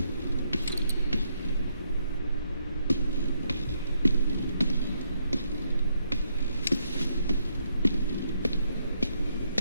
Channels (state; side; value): inverted; both; correlation -0.75